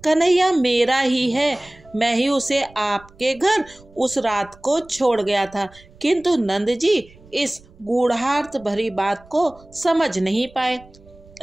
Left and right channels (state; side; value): noise; right; rumble, 25 dB below the sound